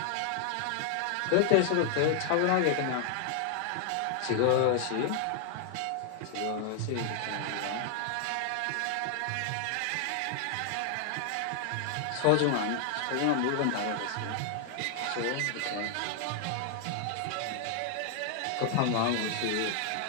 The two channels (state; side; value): different; both; correlation 0.00